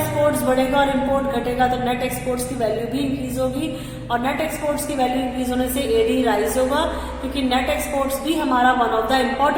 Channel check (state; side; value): identical; both; correlation 1.00